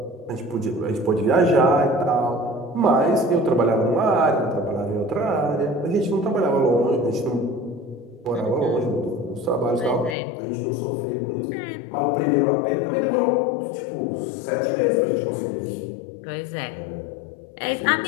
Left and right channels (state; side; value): drops out; right; at 10.2 s